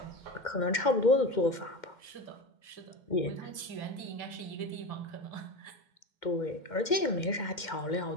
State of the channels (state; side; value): late; right; 2.2 ms